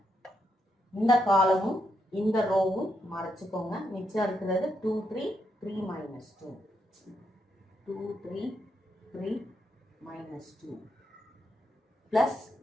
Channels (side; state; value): both; normal; correlation 0.80